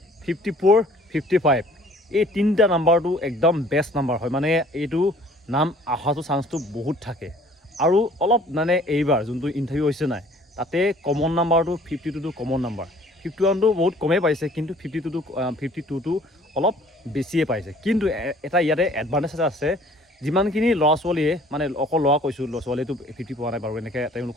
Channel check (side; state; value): both; normal; correlation 0.54